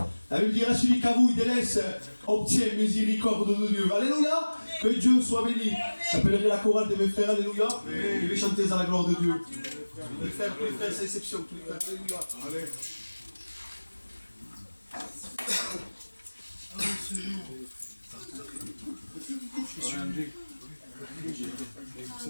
La Bible dira, celui qui avoue, il délaisse, obtient miséricorde de Dieu. Alléluia, que Dieu soit béni. J'appellerai la chorale de mes frères, alléluia. Je vais chanter à la gloire de Dieu. Tous les frères, sans exception, tous les frères, alléluia. Allez.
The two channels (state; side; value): inverted; both; correlation -1.00